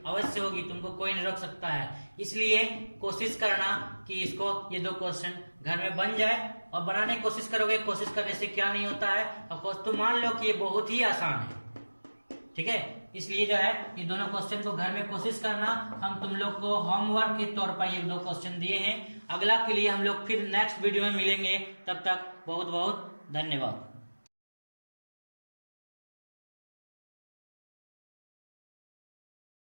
अवश्य होगी, तुमको कोई नहीं रोक सकता है। इसलिए कोशिश करना कि इसको ये 2 क्वेश्चन घर में बन जाए, और बनाने की कोशिश करोगे, कोशिश करने से क्या नहीं होता है, और तुम मान लो कि ये बहुत ही आसान है, ठीक है। इसलिए जो है ये दोनों क्वेश्चन को घर में कोशिश करना, हम तुम लोग को होमवर्क के तौर पर ये 2 क्वेश्चन दिए हैं। अगला के लिए हम लोग फिर नेक्स्ट वीडियो में मिलेंगे, तब तक बहुत बहुत धन्यवाद।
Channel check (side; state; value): both; inverted; correlation -1.00